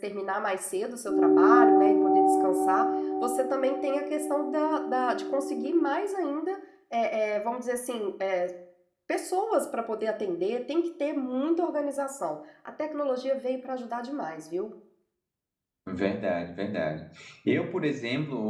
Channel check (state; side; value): identical; both; correlation 1.00